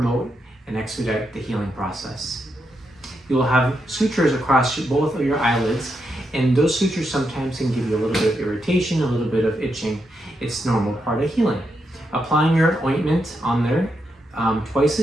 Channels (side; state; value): both; normal; correlation 0.83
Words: and expedite the healing process. You will have sutures across both of your eyelids, and those sutures sometimes can give you a little bit of irritation, a little bit of itching. It's normal part of healing. Applying your ointment on there twice a